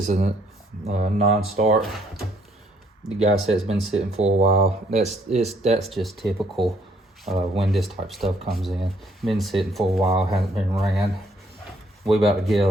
is a non-start. The guy said it's been sitting for a while. That's just typical when this type of stuff comes in. Been sitting for a while, hasn't been ran. We about to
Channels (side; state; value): both; normal; correlation 0.66